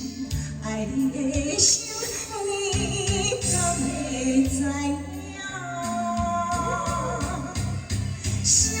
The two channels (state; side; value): identical; both; correlation 1.00